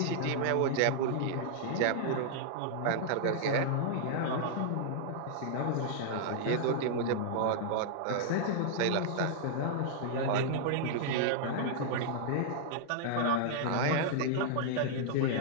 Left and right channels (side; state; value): both; different; correlation -0.01